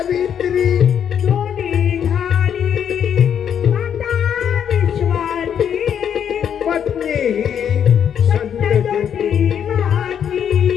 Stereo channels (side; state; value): right; quieter; 8.6 dB